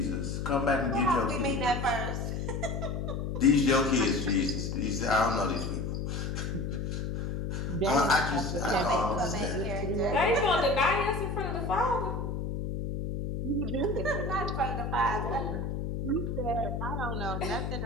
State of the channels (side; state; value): left; noise; hum, 3 dB below the sound